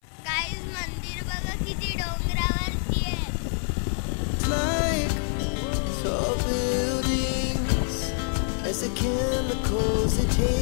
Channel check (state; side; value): silent; right; 61 dB below the other